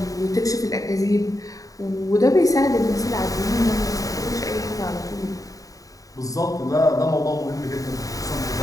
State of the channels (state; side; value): late; right; 0.17 ms